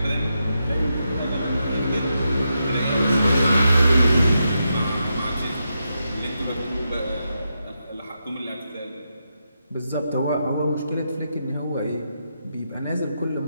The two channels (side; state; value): both; inverted; correlation -0.84